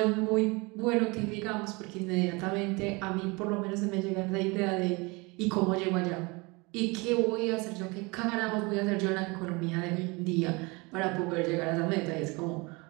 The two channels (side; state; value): left; quieter; 26.5 dB